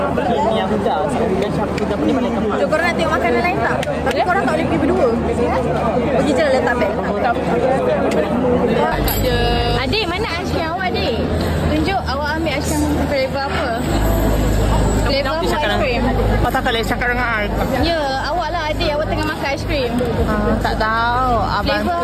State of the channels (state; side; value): identical; both; correlation 1.00